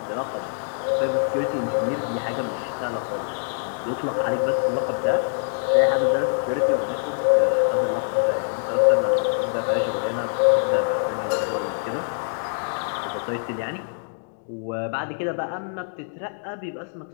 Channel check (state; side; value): silent; right; digital silence